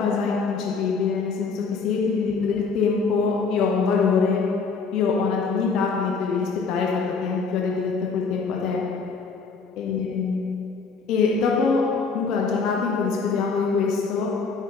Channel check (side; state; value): right; quieter; 4.8 dB